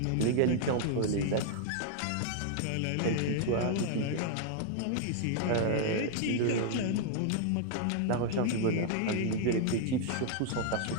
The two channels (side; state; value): both; different; correlation 0.00